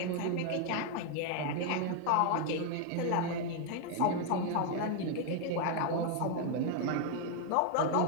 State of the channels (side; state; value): both; different; correlation 0.00